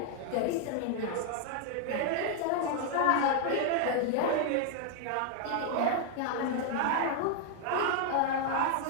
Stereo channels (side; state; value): both; different; correlation 0.00